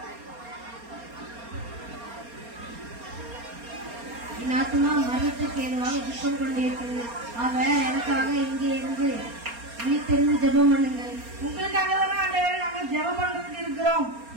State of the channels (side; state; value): left; late; 4.3 ms